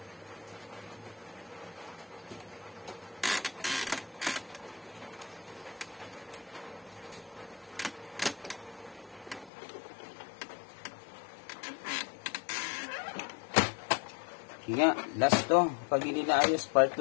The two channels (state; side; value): drops out; right; at 9.5 s